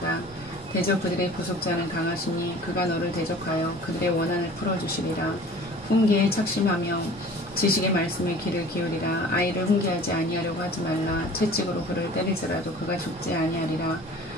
대적 그들의 구속자는 강하시니 그가 너를 대적하여 그들의 원한을 풀어주시리라. 훈계에 착심하며 지식의 말씀에 귀를 기울이라. 아이를 훈계하지 아니하려고 하지 말라. 채찍으로 그를 때릴지라도 그가 죽지 아니하리라.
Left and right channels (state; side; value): normal; both; correlation 0.45